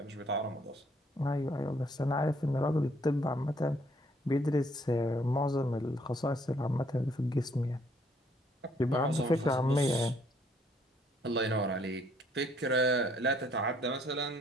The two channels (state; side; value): normal; both; correlation 0.65